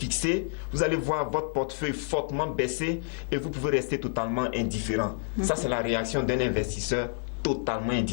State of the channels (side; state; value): right; silent; digital silence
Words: vous allez voir votre portefeuille fortement baisser et vous pouvez rester totalement indifférent. Ça, c'est la réaction d'un investisseur totalement